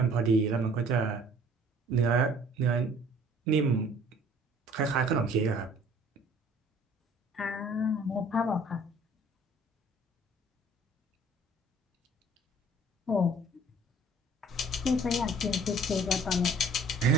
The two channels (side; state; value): both; normal; correlation 0.54